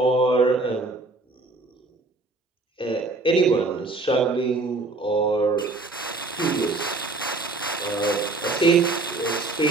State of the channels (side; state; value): left; quieter; 3.3 dB